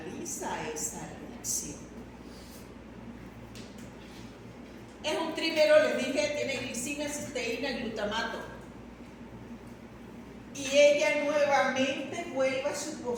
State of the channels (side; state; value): both; identical; correlation 1.00